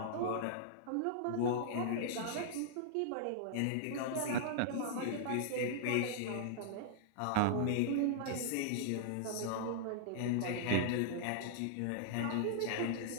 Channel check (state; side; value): different; both; correlation -0.01